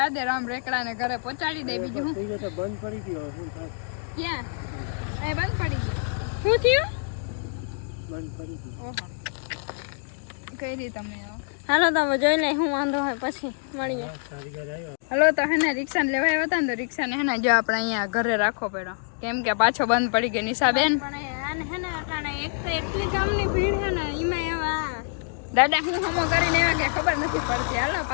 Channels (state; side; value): silent; right; digital silence